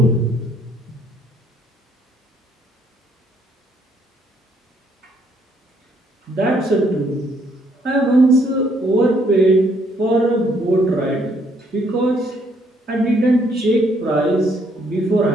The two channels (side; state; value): both; normal; correlation 0.68